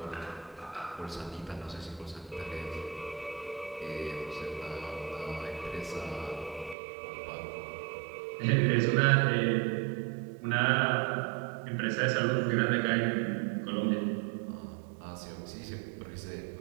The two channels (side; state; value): left; drops out; at 6.8 s